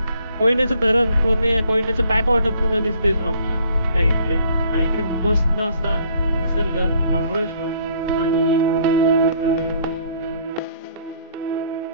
कोयनेचं धरण, कोयनेचं बॅक वॉटर पुन्हा दिसते त्या इकडे. आणि इकडे मस्त असा निसर्ग, महाबळेश्वर.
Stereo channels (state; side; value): inverted; both; correlation -0.62